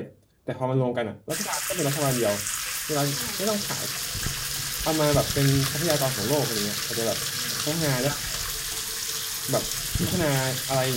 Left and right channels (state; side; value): identical; both; correlation 1.00